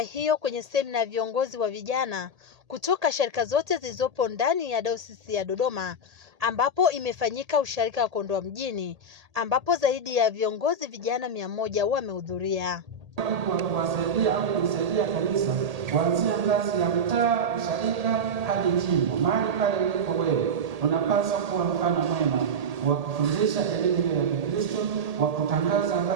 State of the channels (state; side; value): late; left; 1.8 ms